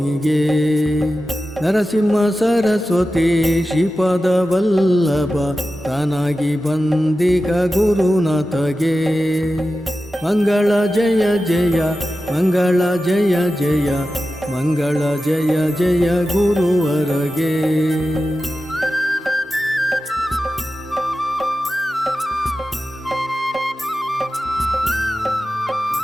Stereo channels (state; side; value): normal; both; correlation 0.93